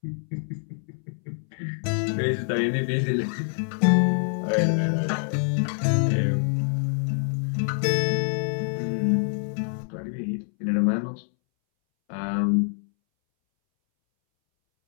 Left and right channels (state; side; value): silent; right; 61 dB below the other